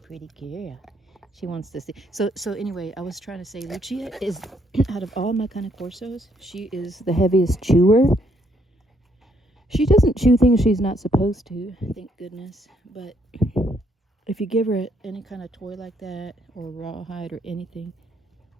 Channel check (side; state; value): both; normal; correlation 0.70